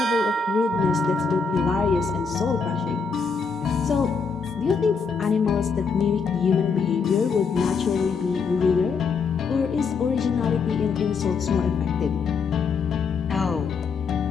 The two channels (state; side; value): quieter; right; 5.2 dB